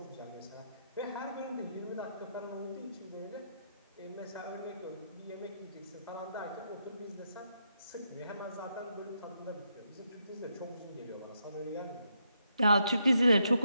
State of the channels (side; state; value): both; inverted; correlation -0.79